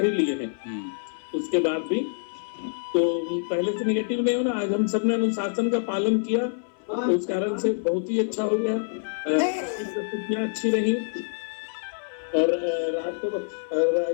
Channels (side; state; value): right; silent; 58 dB below the other